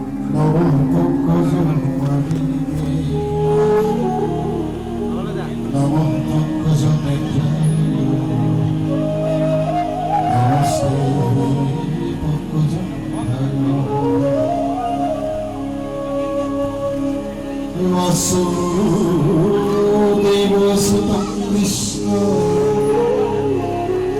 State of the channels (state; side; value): identical; both; correlation 1.00